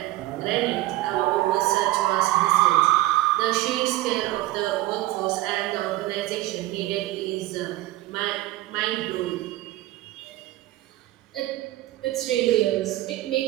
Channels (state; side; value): quieter; left; 16.6 dB